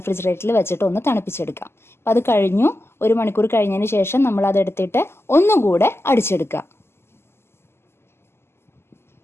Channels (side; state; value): right; late; 0.12 ms